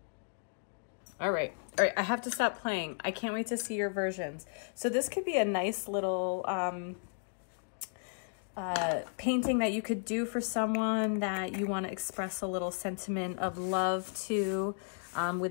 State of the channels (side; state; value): right; silent; digital silence